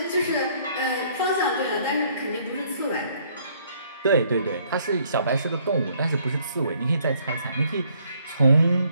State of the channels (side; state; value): both; inverted; correlation -0.65